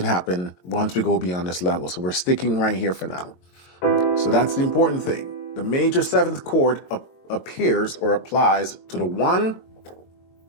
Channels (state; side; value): late; right; 22 ms